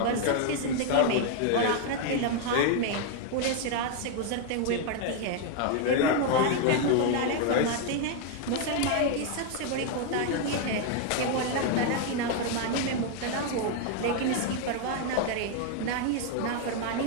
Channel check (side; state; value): both; different; correlation 0.00